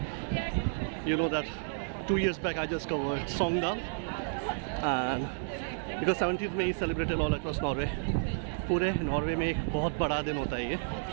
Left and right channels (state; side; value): silent; left; 57 dB below the other